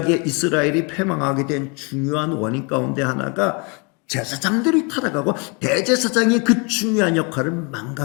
이스라엘이 패망하게 된 중요한 원인 가운데 하나가 제사장들이 타락하고 대제사장이 그 중요한 역할을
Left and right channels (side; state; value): right; quieter; 32.3 dB